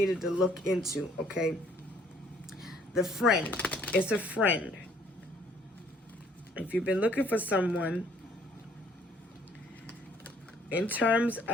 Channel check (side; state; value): both; normal; correlation 0.61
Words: to look into, okay? The friend. It's a friend. If you've been looking for someone, in terms